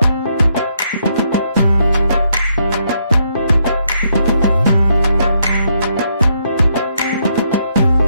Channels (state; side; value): inverted; both; correlation -0.75